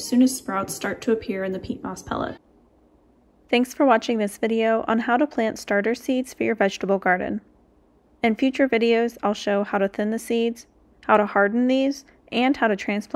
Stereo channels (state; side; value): identical; both; correlation 1.00